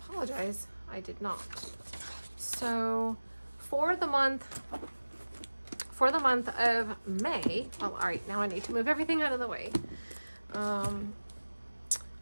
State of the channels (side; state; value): both; inverted; correlation -1.00